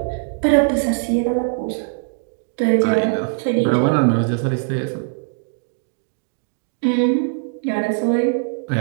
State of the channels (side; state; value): left; silent; 65 dB below the other